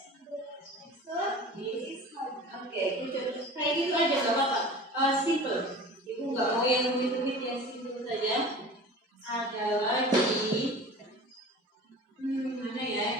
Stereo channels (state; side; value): normal; both; correlation 0.39